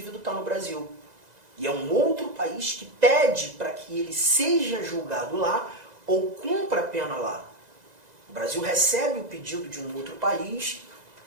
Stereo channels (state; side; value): late; left; 2.0 ms